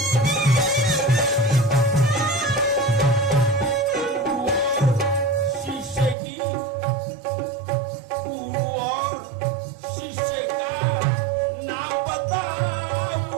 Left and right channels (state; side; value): drops out; left; at 6.2 s